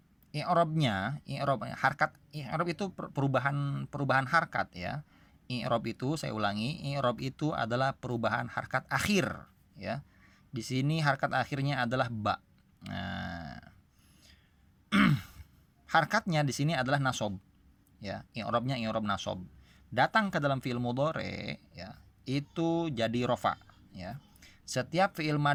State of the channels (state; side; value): identical; both; correlation 1.00